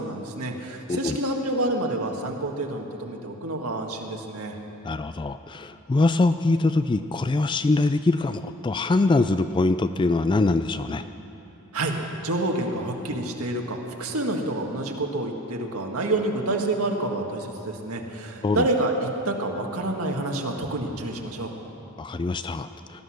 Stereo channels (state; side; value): normal; both; correlation 0.52